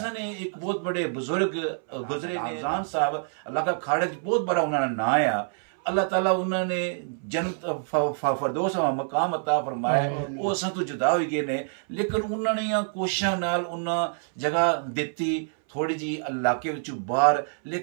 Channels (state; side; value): silent; left; 61 dB below the other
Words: ने एक बहुत बड़े बुजुर्ग गुजरे आजान साहब इलाका खाड़े बहुत बड़ा उन्होंने ना आया, अल्लाह ताला उन्होंने जन्नत फरदौस मकाम अता फरमाया, वो असा तो जुदा हो गए ने, लेकिन उन्होंने कोशिशों नाल उन्हें जगह दी थोड़ी जी इलाके बाहर,